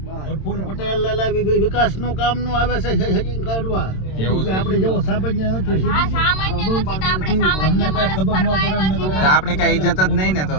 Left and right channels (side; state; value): right; late; 27 ms